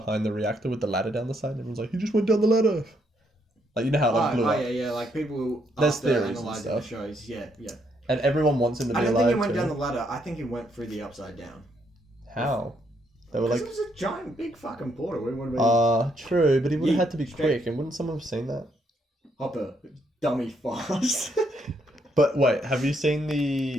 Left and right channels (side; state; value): both; normal; correlation 0.74